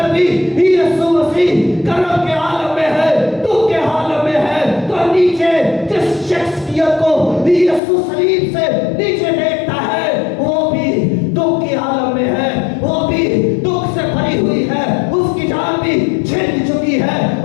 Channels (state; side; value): drops out; right; at 7.8 s